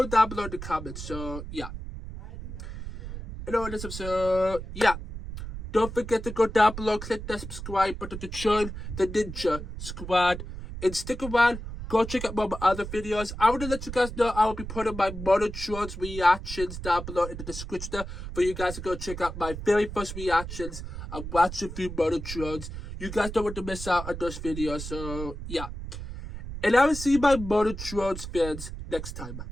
down below in the comments. So yeah, and all this episode, yeah. Don't forget to go down below, click that subscribe button to join the Ninja Squad. And stick around, go check out more of my other videos. I want to let you guys know I will be putting my Motortrons reactions down below in the description for you guys to go check out my very first reactions of watching through Motortrons. You guys don't want to miss out on those videos, so yeah. And I will see my Motortrons fans next time.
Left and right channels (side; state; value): right; noise; rumble, 9 dB below the sound